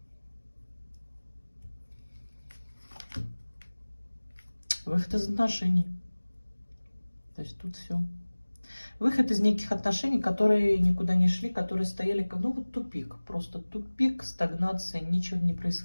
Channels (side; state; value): both; inverted; correlation -1.00